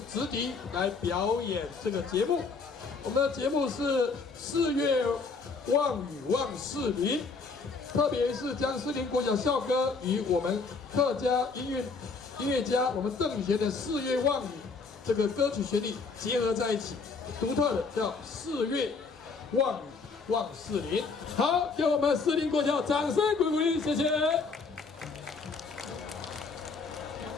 直笛来表演这个节目。我们的节目是4月望雨望士林，特别是将士林国小校歌与我们客家音乐家我们邓协的《4月望雨》这个歌曲旋律结合在一起，独特的叫4月望雨望士林。好，给我们士林国小掌声鼓励，谢谢。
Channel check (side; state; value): right; quieter; 4.5 dB